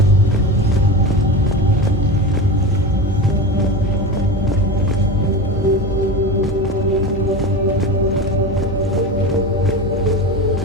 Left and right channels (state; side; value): normal; both; correlation 0.25